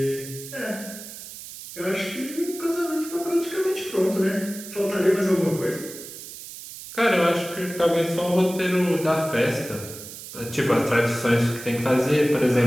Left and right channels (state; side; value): noise; right; hiss, 13 dB below the sound